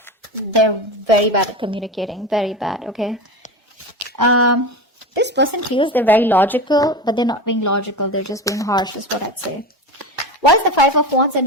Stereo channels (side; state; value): both; normal; correlation 0.25